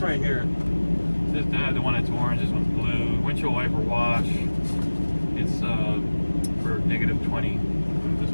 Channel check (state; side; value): inverted; both; correlation -1.00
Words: right here. The one that's orange, this one's blue. Windshield wiper wash. It's for -20. This